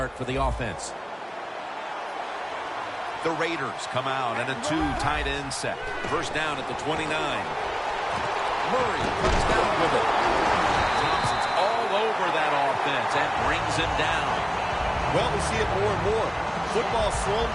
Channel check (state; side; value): identical; both; correlation 1.00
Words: for the offense. The Raiders come out in a two tight end set. First down at the 29. Murray comes down with it. Thompson's all over that offense and brings him down. Well, we see it more and more. Football thrown